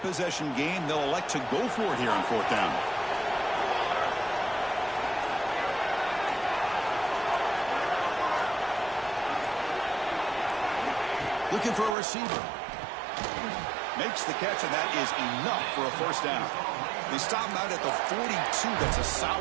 game. They'll elect to go for it here on fourth down. Looking for a receiver. Makes the catch, and that is enough for a first down. They stop him out at the 42. That's a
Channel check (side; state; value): left; drops out; at 12.0 s